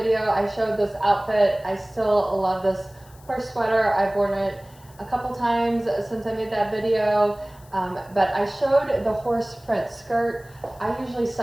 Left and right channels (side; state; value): left; noise; hiss, 26 dB below the sound